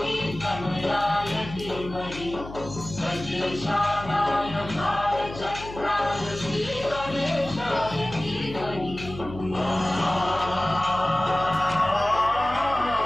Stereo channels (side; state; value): left; noise; hum, 13 dB below the sound